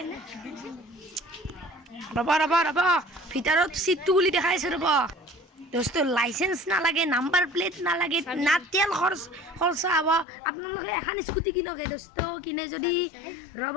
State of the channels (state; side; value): drops out; right; at 10.2 s